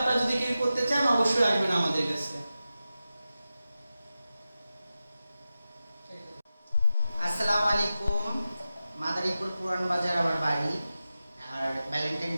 যদি কেউ করতে চান অবশ্যই আসবেন আমাদের কাছে। আসসালামু আলাইকুম। মাদারীপুর পুরান বাজার আমার বাড়ি। আর ভ্যালেন্টাইন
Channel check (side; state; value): both; inverted; correlation -0.93